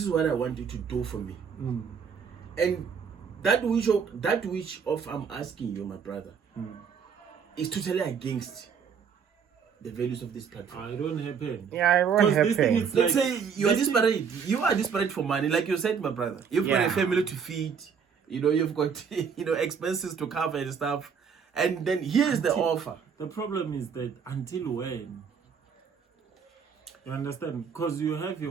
is what I want you to do for me. And that which of I'm asking you, my brother, is totally against the values of this platform. I don't happen. Yeah, it won't happen. Let's say you are desperate. You are desperate for money, like you said, my brother. You've got a family to feed. You've got expenses to cover and stuff. And then here's the offer. The problem is that until when? You understand? Because you have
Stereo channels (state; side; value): quieter; left; 6.6 dB